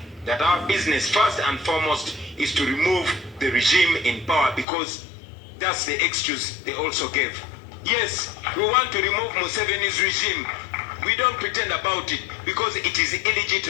that our business first and foremost is to remove the regime in power, because that's the excuse they also gave. Yes, we want to remove Museveni's regime. We don't pretend about it because it is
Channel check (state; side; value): drops out; right; at 4.7 s